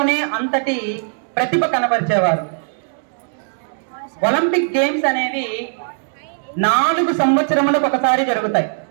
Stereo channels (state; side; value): silent; left; digital silence